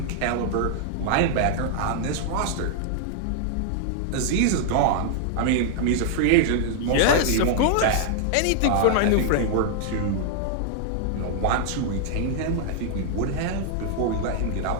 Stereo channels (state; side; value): different; both; correlation -0.01